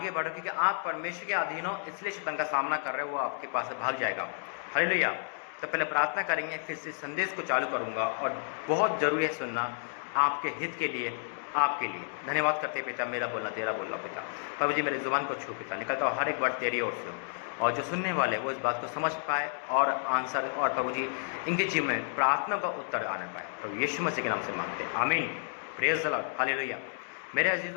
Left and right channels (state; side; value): silent; right; digital silence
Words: बढ़ो, क्योंकि आप परमेश्वर के अधीन हो, इसलिए शैतान का सामना कर रहे हो, वो आपके पास से भाग जाएगा। हालेलुया। तो पहले प्रार्थना करेंगे, फिर से संदेश को चालू करूंगा, और बहुत ज़रूरी है सुनना, आपके हित के लिए, आपके लिए। धन्यवाद करते हैं पिता, मेरा बोलना तेरा बोलना पिता। प्रभु जी, मेरे जुबान को छू पिता, निकलता हर एक वर्ड तेरी ओर से हो, और जो सुनने वाले वो इस बात को समझ पाए और आंसर, और प्रभु जी इनके जीवन में प्रार्थना का उत्तर आने पाए। प्रभु यीशु मसीह के नाम से मांगते हैं, आमीन। Praise the Lord, hallelujah. मेरे